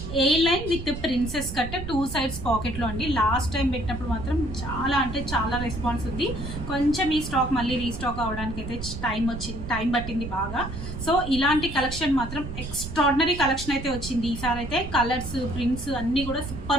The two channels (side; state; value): right; noise; rumble, 8 dB below the sound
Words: A line with princess cut 2 sides pocket లో అండి. లాస్ట్ టైం పెట్టినప్పుడు మాత్రం చాలా అంటే చాలా రెస్పాన్స్ ఉంది. కొంచెం ఈ స్టాక్ మళ్ళీ రీస్టాక్ అవడానికి అయితే టైం పట్టింది బాగా. సో ఇలాంటి కలెక్షన్ మాత్రం ఎక్స్ట్రాడినరీ కలెక్షన్ అయితే వచ్చింది. ఈసారి అయితే కలర్స్, ప్రింట్స్ అన్ని కూడా